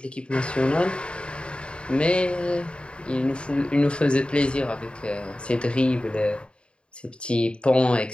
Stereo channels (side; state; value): right; late; 0.055 ms